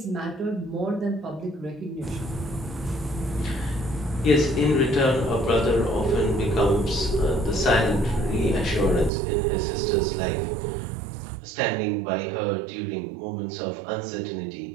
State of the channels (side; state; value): left; drops out; at 9.1 s